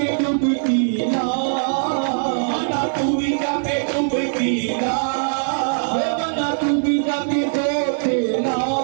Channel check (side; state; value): left; silent; 65 dB below the other